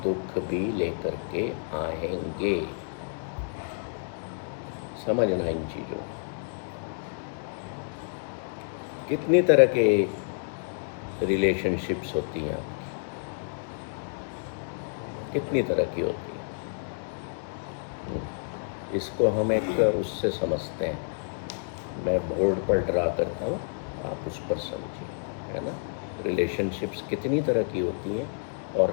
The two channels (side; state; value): right; silent; digital silence